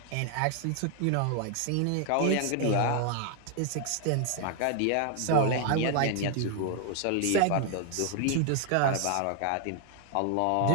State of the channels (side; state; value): both; different; correlation 0.00